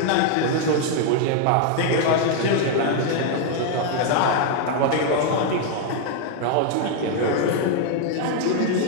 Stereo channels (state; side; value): different; both; correlation 0.00